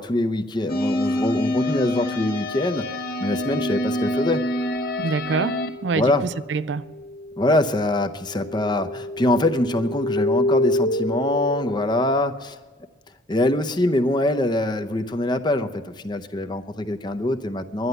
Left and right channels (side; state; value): both; normal; correlation 0.57